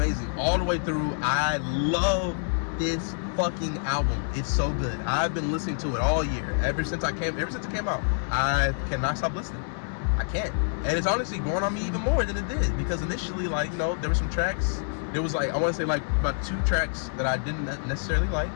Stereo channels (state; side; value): silent; right; digital silence